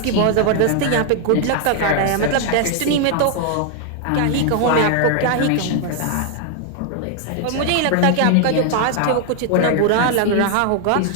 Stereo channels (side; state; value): both; different; correlation 0.00